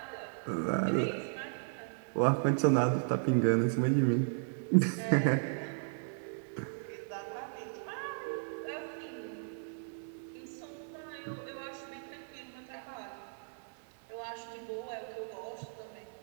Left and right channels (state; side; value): silent; left; digital silence